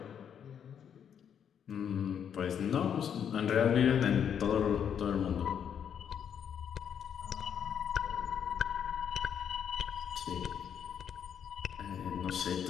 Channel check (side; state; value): right; quieter; 8.3 dB